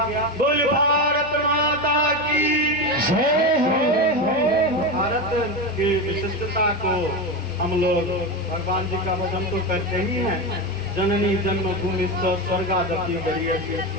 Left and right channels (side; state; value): both; normal; correlation 0.17